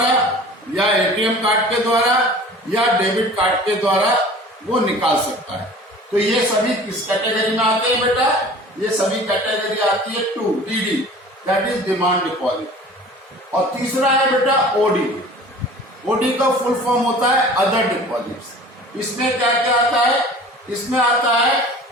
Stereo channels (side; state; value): both; normal; correlation 0.44